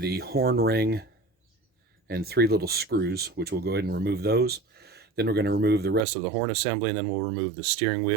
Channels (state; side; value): drops out; left; at 6.1 s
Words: horn ring and 3 little screws, which we'll go ahead and remove those. Then we're going to remove the rest of the horn assembly, and then we'll remove the steering